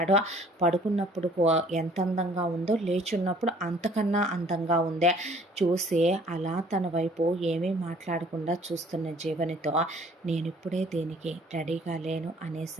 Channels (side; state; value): both; normal; correlation 0.56